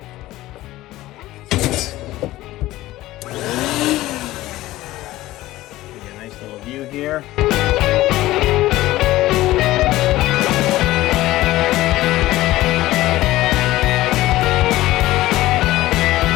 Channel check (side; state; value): right; quieter; 16.6 dB